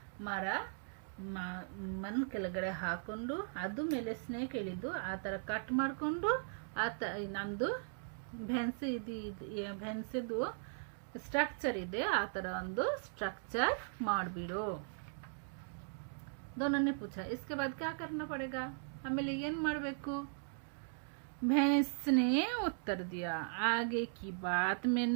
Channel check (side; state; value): left; silent; digital silence